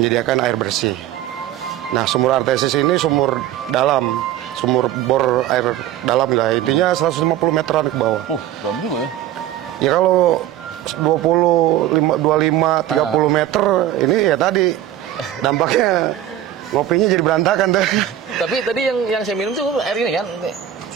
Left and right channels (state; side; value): quieter; left; 11.9 dB